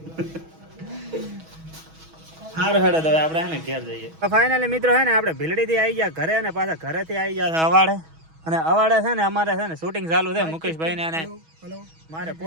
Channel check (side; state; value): left; late; 6.2 ms